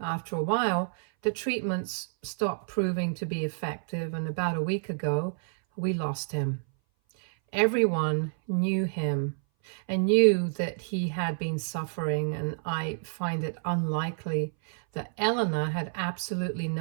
a while, the treatments stopped proving to be effective, and about a week ago, we lost him. Everyone knew him and knew that he had been suffering, and I find it unlikely that Elena had absolutely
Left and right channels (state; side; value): silent; left; 58 dB below the other